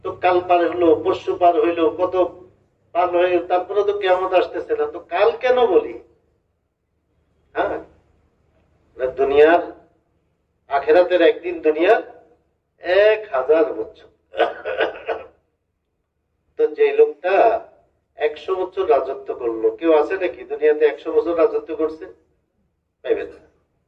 তো কাল পার হলো, পরশু পার হইলো, কত পার হয়ে তারপরে তো কিয়ামত আসতেছে না, তো কাল কেন বলি? হ্যাঁ, দুনিয়ার আখেরাতের একদিন, দুনিয়ার 1000 বছর। তো যে লোকটা 100 বছর রাজত্ব করলো, কেউ আছে নাকি দুনিয়াতে 100 বছর রাজত্ব করছে? পাইবেন না।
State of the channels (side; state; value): both; identical; correlation 1.00